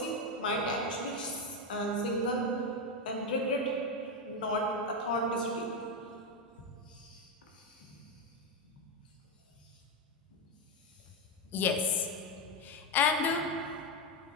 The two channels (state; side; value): normal; both; correlation 0.09